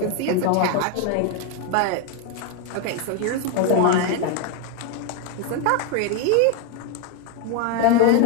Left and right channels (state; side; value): different; both; correlation 0.01